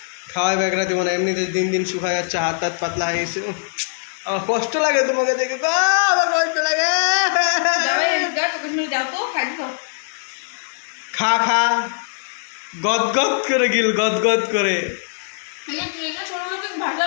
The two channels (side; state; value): right; silent; digital silence